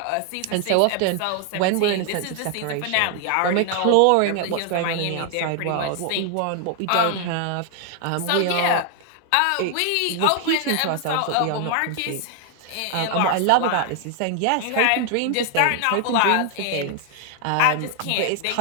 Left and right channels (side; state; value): both; different; correlation 0.00